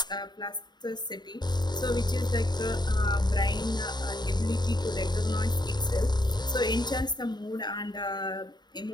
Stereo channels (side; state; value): right; late; 0.21 ms